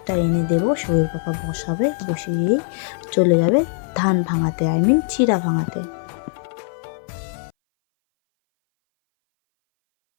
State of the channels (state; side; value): silent; right; 60 dB below the other